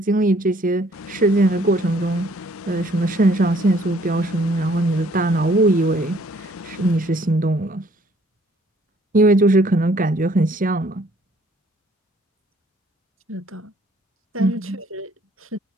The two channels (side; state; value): both; normal; correlation 0.61